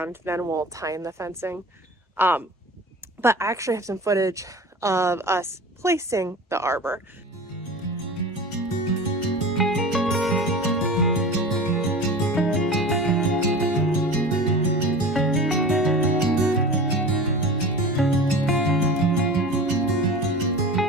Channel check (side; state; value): both; normal; correlation 0.35